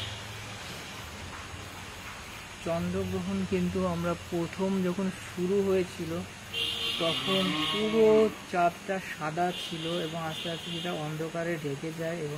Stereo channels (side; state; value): both; identical; correlation 1.00